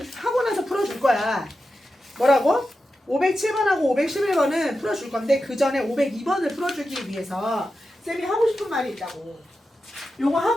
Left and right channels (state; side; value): normal; both; correlation 0.91